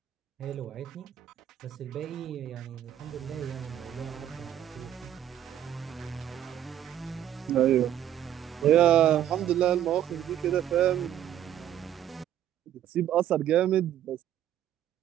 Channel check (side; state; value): left; quieter; 11.1 dB